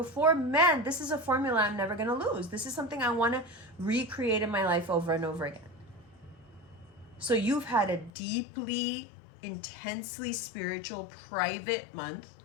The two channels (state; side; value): drops out; right; at 8.1 s